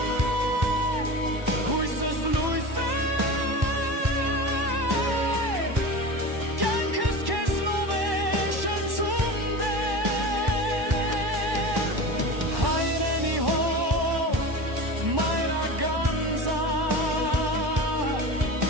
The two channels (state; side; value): late; left; 1.1 ms